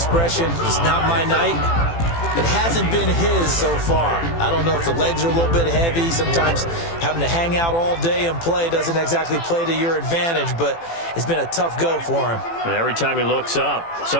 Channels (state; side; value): late; right; 18 ms